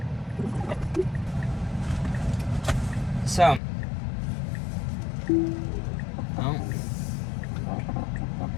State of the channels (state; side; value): drops out; right; at 3.6 s